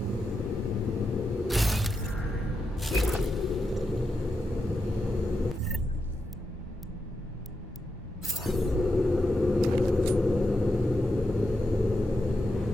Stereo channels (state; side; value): normal; both; correlation 0.87